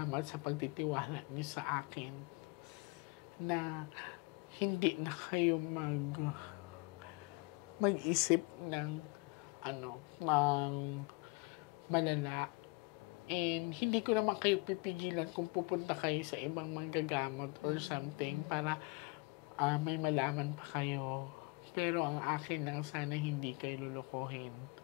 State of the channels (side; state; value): right; quieter; 27.1 dB